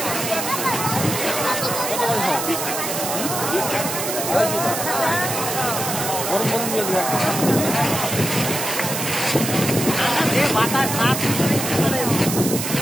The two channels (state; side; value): noise; right; hiss, 3 dB below the sound